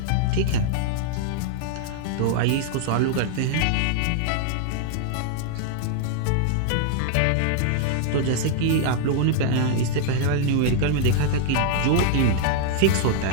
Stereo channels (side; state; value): both; different; correlation -0.01